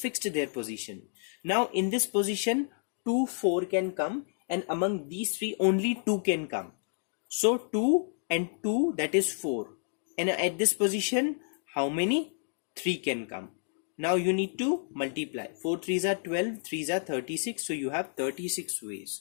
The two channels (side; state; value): right; silent; digital silence